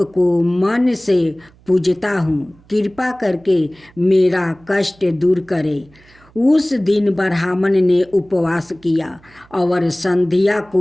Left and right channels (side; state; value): right; noise; hum, 29 dB below the sound